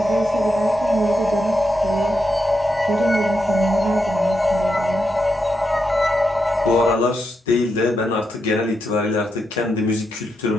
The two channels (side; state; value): both; normal; correlation 0.85